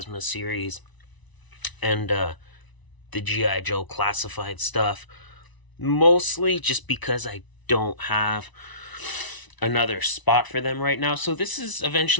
series and the GI Joe classified stuff. Mostly just because I don't have another spot for them right now. So this is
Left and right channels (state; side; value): late; right; 1.0 ms